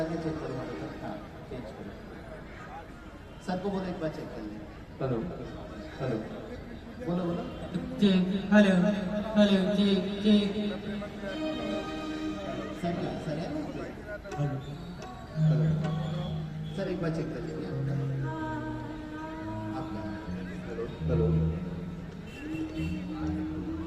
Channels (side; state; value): both; identical; correlation 1.00